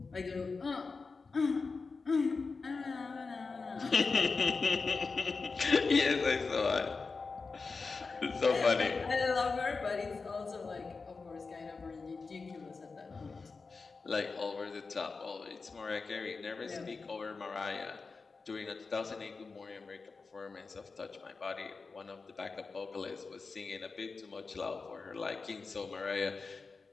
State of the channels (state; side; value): quieter; right; 4.4 dB